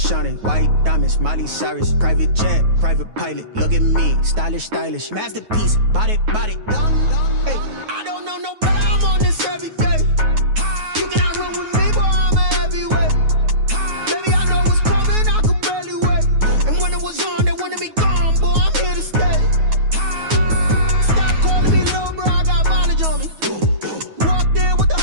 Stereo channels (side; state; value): left; late; 9.4 ms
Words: white diamonds, Miley Cyrus, private jet, private pilot. Look at me, stylish, masterpiece, body, done. Hey, I don't know no better. I'm on this every day. You cannot run with me, boy. I'm a heavyweight. Baby, I know what's coming. I could barely wait. And when it was on, they wanted me gone, boy. I'm here to stay. Stop calling me little bro. I got mileage on me. Walked in with the